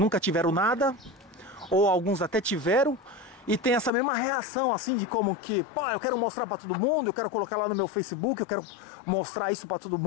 tiveram nada, ou alguns até tiveram, e tem essa mesma reação assim de como que, pô, eu quero mostrar para todo mundo, eu quero colocar lá no meu Facebook, eu quero mostrar isso para todo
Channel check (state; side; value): drops out; right; at 3.9 s